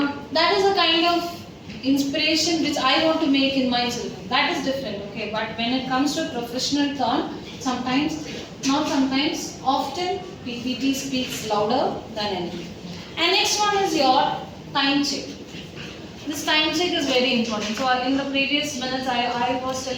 is a kind of inspiration which I want to make in my children. That is different, okay? But when it comes to professional turn, sometimes, not sometimes, often PPT speaks louder than anything. And next one is your time check. This time check is very important. So in the previous minutes I was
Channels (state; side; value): identical; both; correlation 1.00